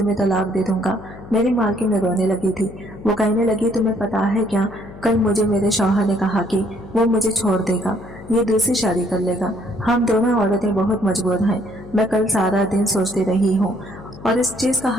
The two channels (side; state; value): left; noise; hum, 17 dB below the sound